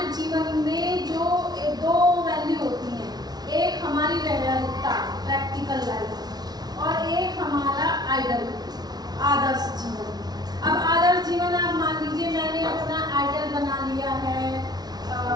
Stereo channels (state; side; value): late; left; 0.19 ms